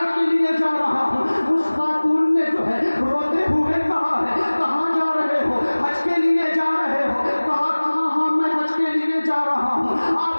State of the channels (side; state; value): both; inverted; correlation -1.00